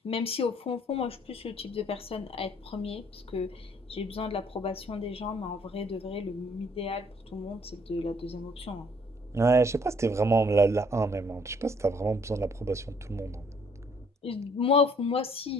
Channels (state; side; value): normal; both; correlation 0.63